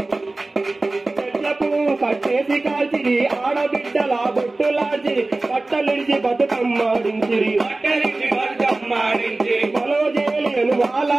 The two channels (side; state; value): left; quieter; 3.1 dB